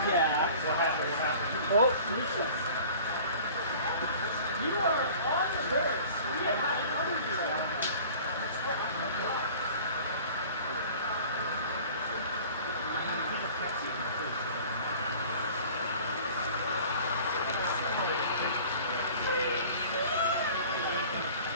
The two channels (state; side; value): inverted; both; correlation -0.46